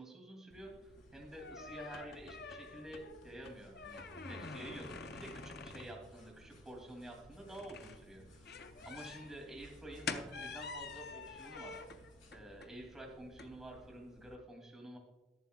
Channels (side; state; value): both; normal; correlation 0.51